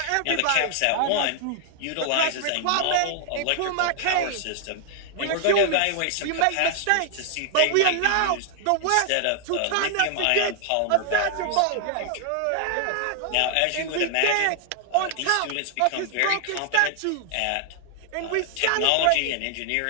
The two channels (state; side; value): different; both; correlation 0.00